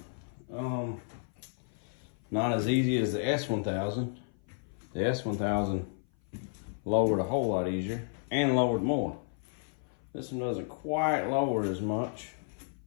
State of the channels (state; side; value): silent; right; 55 dB below the other